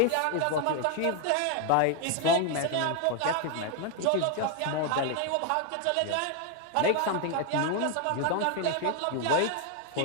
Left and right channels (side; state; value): both; different; correlation 0.01